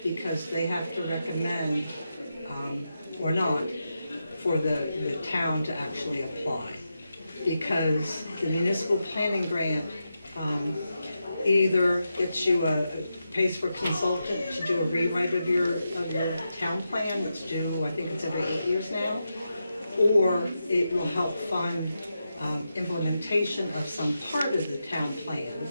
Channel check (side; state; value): both; inverted; correlation -0.88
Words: because they have to recommend, or not, for the town to actually apply. Because the municipal planning grant either gets you pays for a consultant to do a rewrite of your town plan, that's due, I think it's every 8 years now, or it will help fund implementation of some part of the town plan.